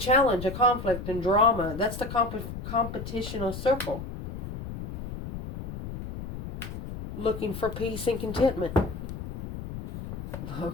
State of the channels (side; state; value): left; noise; rumble, 8 dB below the sound